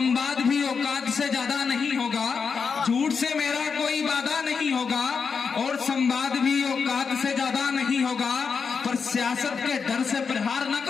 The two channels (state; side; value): quieter; right; 5.7 dB